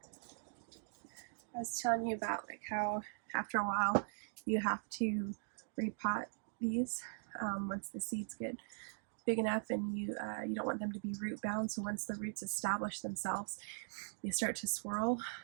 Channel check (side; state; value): left; silent; digital silence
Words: I was telling you about like how after a while you have to repot these once the seeds get big enough, and you don't want them to be root bound. So once the roots establish themselves, they start to swirl